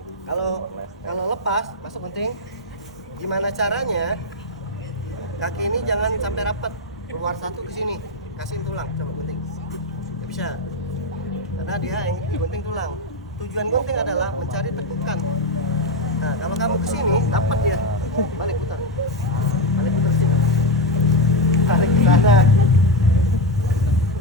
kalau lepas masuk gunting, gimana caranya? Kaki ini jangan sampai rapat, keluar 1 ke sini, kasihin tulang, coba gunting. Nggak bisa, karena dia yang digunting tulang. Tujuan gunting adalah mencari tekukan. Nah, kalau kamu ke sini, dapat dia, balik putar sini, tarik ke sana.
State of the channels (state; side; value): normal; both; correlation 0.09